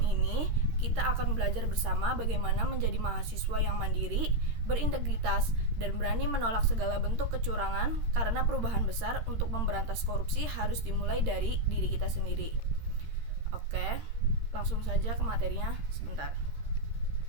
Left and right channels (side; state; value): left; late; 13 ms